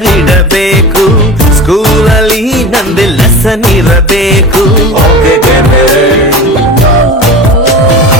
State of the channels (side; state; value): both; normal; correlation 0.32